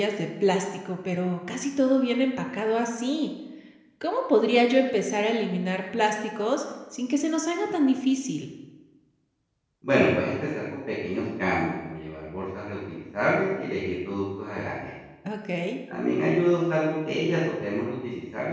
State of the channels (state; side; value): identical; both; correlation 1.00